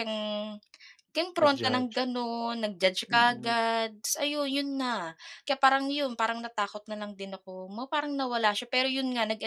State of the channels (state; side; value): identical; both; correlation 1.00